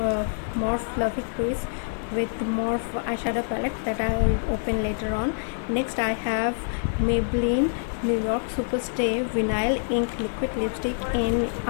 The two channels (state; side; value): silent; right; digital silence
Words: Fluffy Crease with Morph eyeshadow palette that I'll open later on. Next, I have Maybelline New York Superstay Vinyl Ink Liquid Lipstick in